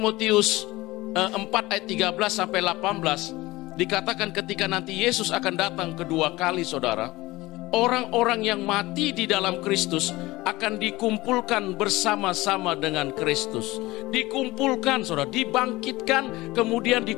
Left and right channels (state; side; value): quieter; right; 19.6 dB